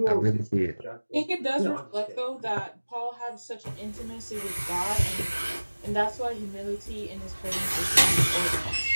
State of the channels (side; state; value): both; inverted; correlation -1.00